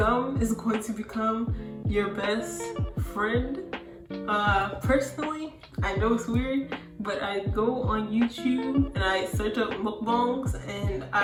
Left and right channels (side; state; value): both; identical; correlation 1.00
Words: is going to become your best friend. Personally, I know it's weird, but I go on YouTube and I search up mukbangs, and